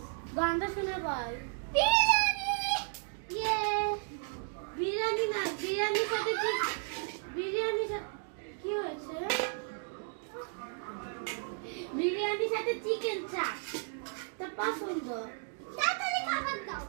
গানটা শুনে বল। বিরিয়ানি। ইয়ে বিরিয়ানি না, বিরিয়ানির সাথে কি, বিরিয়ানির সাথে কি হয়েছে? বিরিয়ানির সাথে চিকেন চাপ। তো পছন্দ। তাড়াতাড়ি খাবার দাও।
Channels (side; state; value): left; silent; 55 dB below the other